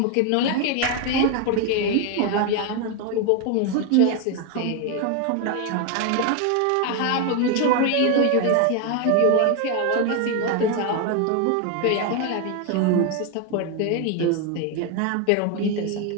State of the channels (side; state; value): both; different; correlation 0.01